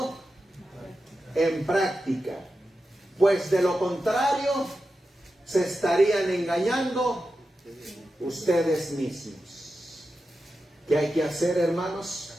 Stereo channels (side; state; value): both; normal; correlation 0.90